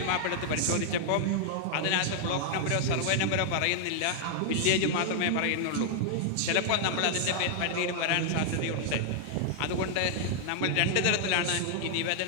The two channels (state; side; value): different; both; correlation -0.01